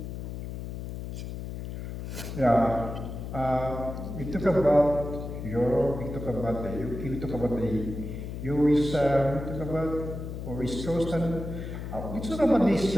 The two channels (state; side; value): noise; left; hum, 7 dB below the sound